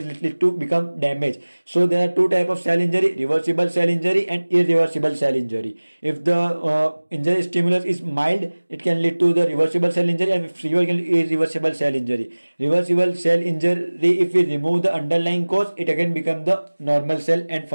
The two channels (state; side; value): inverted; both; correlation -1.00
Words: lead to become damaged. So there are two types of cell injury: reversible cell injury and irreversible cell injury. If the injury stimulus is mild, it can lead to the reversible cell injury, and if severe, can irreversible cell injury. Reversible cell injury, if we remove the underlying cause, it again become the normal cell and